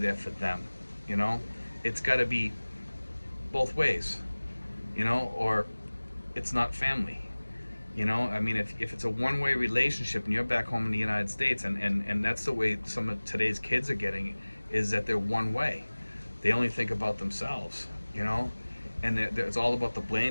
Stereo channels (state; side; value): inverted; both; correlation -1.00